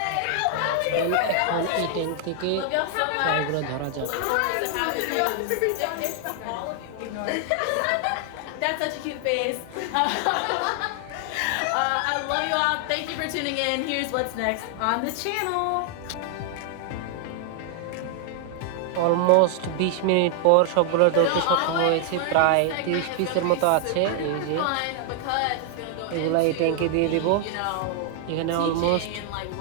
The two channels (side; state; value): both; different; correlation 0.00